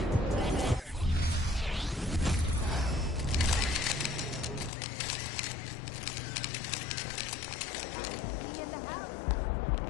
MP in the house.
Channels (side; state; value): right; drops out; at 4.7 s